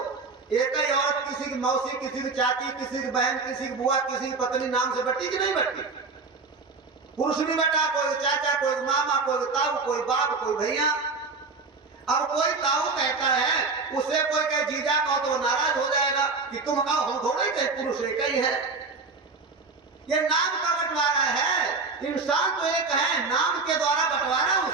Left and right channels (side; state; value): left; quieter; 4.1 dB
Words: एक ही औरत किसी की मौसी, किसी की चाची, किसी की बहन, किसी की बुआ, किसी की पत्नी नाम से बटी कि नहीं बटी? पुरुष भी बटा, कोई चाचा, कोई मामा, कोई ताऊ, कोई बाप, कोई भैया। अब कोई ताऊ कहता है, उसे कोई कहे जीजा कहो तो नाराज हो जाएगा कि तुम कहो, हम थोड़े कहे पुरुष एक ही है। ये नाम का बंटवारा है। इंसान तो एक है, नाम के द्वारा बंटवारा